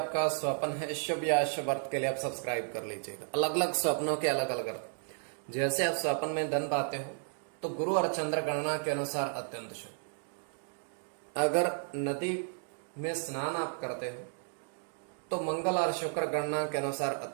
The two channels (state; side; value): silent; left; 56 dB below the other